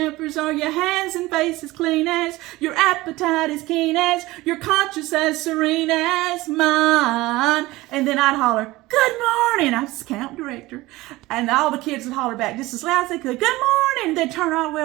Are your hands and faces clean as? Your appetite as keen as? Your conscience as serene as mine? And then I'd holler, good morning. I was the camp director. And all the kids would holler back just as loud as they could, good morning. They'd turn all the way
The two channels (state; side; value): quieter; left; 19.3 dB